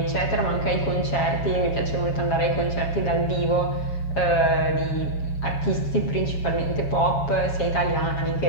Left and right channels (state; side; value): late; right; 7.3 ms